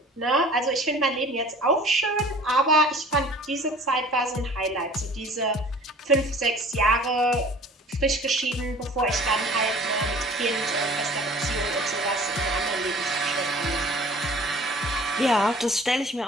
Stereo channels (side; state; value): both; normal; correlation 0.47